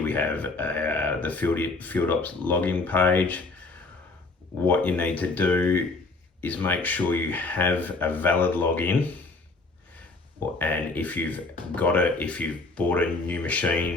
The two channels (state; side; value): quieter; right; 3.5 dB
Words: we have the FieldOps login page. What you need to do is make sure you have a valid login, and if you've bought a new